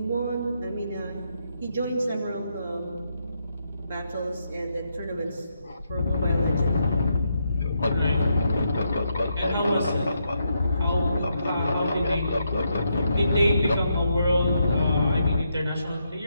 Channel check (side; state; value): both; inverted; correlation -0.80